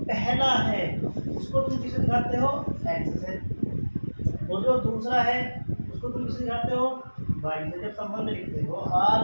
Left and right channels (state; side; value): inverted; both; correlation -1.00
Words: पहला है उसको तुम किसे दिखाते हो? x से, और जो दूसरा है उसको तुम किसे दिखाते हो? y से। जब संबंध लिखते हो r